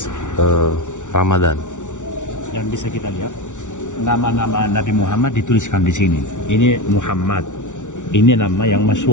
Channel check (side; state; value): right; late; 0.86 ms